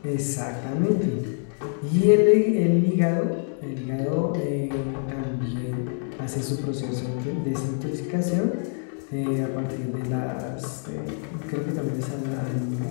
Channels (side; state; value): right; silent; 58 dB below the other